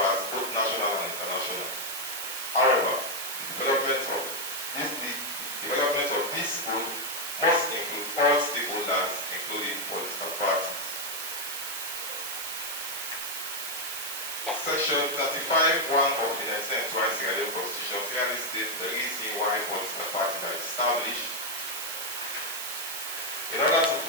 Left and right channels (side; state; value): right; noise; hiss, 5 dB below the sound